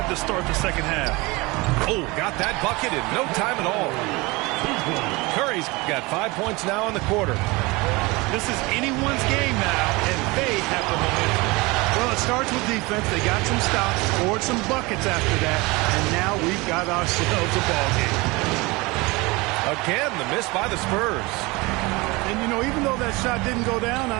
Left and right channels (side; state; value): left; quieter; 24.0 dB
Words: to start the second half. Oh, got that bucket in no time at all. Curry's got 5 points now in the quarter. This is anyone's game now, and they have the momentum. Well, it starts with defense. They got some stops, scored some buckets after that, and now we've got ourselves a ball game. Again, the miss by the Spurs. And, you know, even though that shot didn't go down,